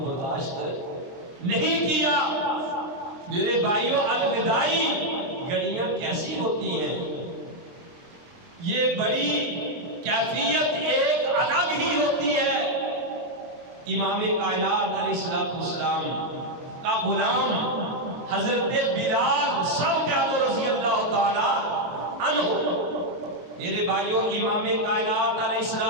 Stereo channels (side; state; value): left; late; 23 ms